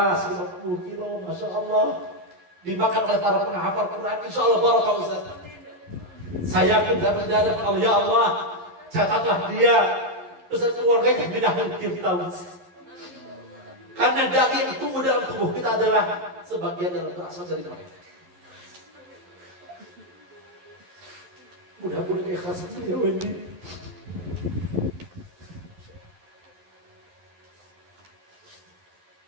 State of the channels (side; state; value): left; late; 11 ms